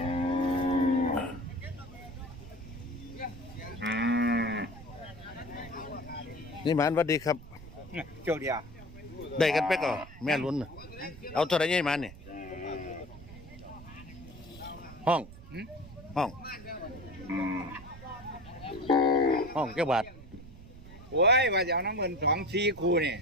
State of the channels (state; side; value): noise; right; rumble, 17 dB below the sound